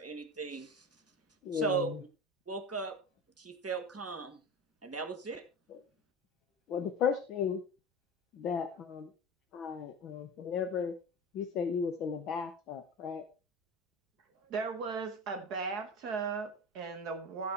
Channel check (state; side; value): normal; both; correlation 0.31